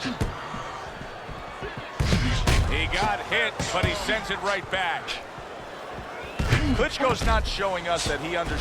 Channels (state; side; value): identical; both; correlation 1.00